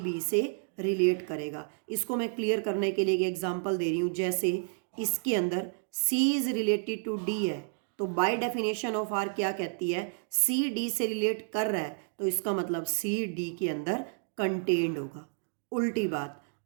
से रिलेट करेगा। इसको मैं क्लियर करने के लिए एक एग्जांपल दे रही हूँ, जैसे इसके अंदर C is related to D है, तो बाय डेफिनेशन ऑफ आर क्या कहती है, C D से रिलेट कर रहा है तो इसका मतलब C D के अंदर कंटेन्ड होगा। उल्टी बात,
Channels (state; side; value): silent; left; digital silence